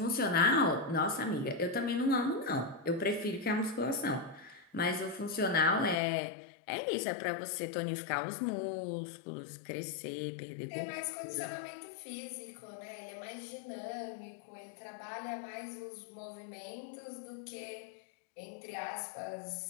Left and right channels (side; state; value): right; drops out; at 6.0 s